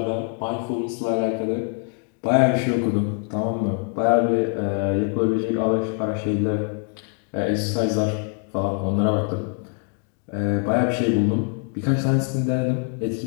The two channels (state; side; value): quieter; right; 39.4 dB